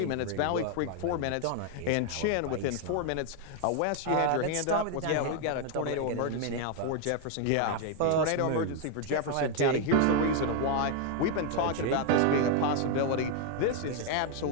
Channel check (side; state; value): both; different; correlation 0.01